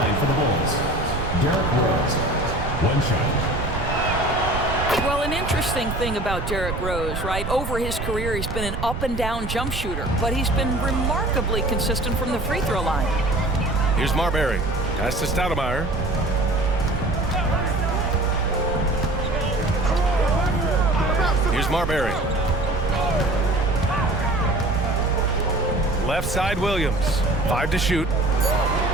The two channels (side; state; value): right; noise; rumble, 5 dB below the sound